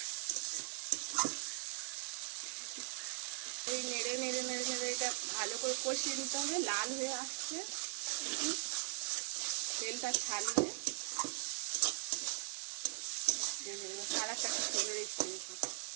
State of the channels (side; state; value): left; silent; 51 dB below the other